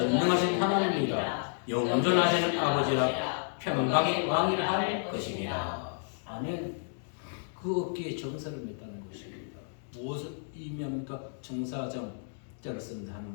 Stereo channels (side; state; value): right; silent; digital silence